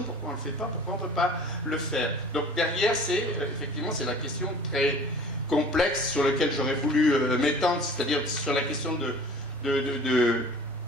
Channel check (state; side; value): normal; both; correlation 0.45